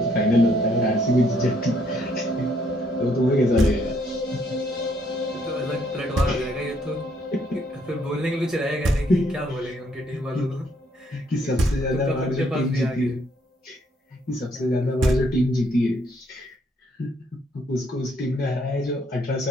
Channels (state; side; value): normal; both; correlation 0.69